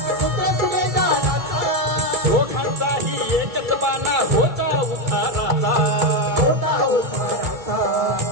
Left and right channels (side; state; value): left; late; 2.3 ms